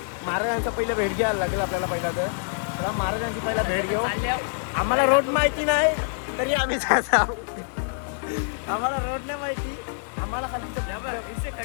महाराजांचा पहिलं भेट घ्यायला लागेल आपल्याला. पहिला तर चला महाराजांची पहिला भेट घेऊ. चालल्यावर आम्हाला रोड माहिती नाही तरी आम्ही जात आहोत. आम्हाला रोड नाही माहिती. आम्हाला खाली इथे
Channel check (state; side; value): silent; right; digital silence